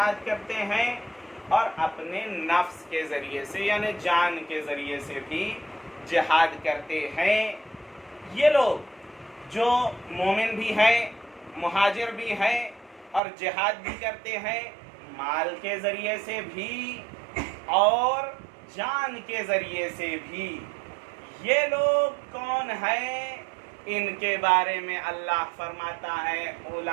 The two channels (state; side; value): drops out; left; at 13.2 s